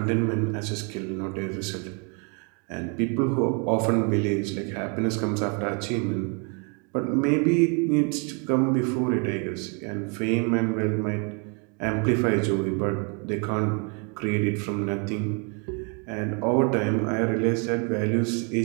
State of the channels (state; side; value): quieter; left; 36.0 dB